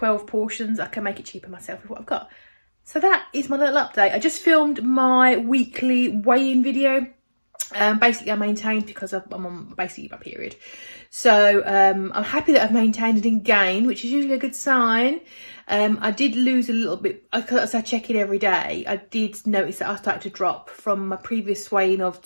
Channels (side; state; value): both; inverted; correlation -1.00